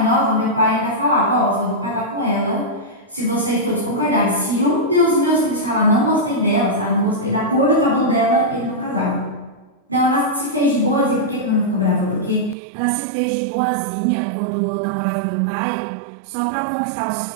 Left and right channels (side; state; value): left; drops out; at 12.6 s